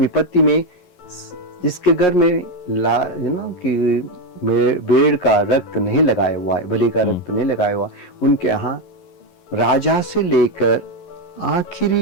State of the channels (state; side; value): late; right; 11 ms